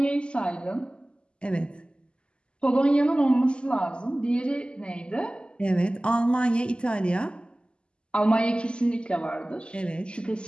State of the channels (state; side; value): late; right; 0.051 ms